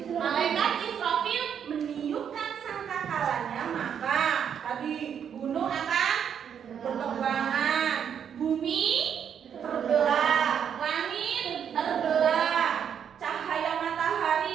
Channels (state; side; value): quieter; left; 8.2 dB